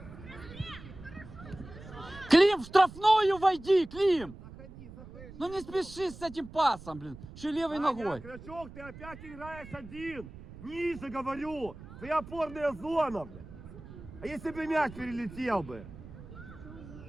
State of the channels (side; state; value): right; noise; rumble, 16 dB below the sound